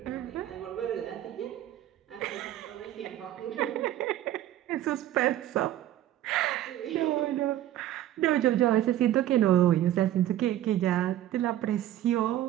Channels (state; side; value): quieter; left; 13.0 dB